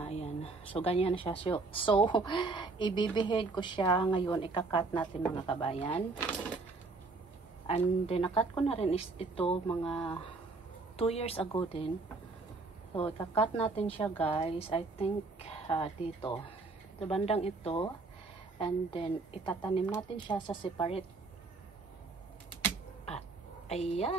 Ayan. So, ganyan na siya. So ibibihid ko siya ngayon. Ikakat natin mga kabayan. And then, nakat ko na rin ito mga 2 years ago din. So, ikakat natin siya guys. I think dito. Sa bandang ito. And then, itatanim natin siya sa separate.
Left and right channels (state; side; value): quieter; left; 3.7 dB